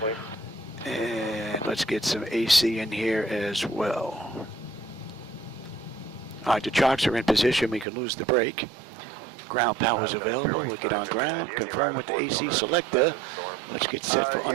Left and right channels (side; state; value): left; drops out; at 7.9 s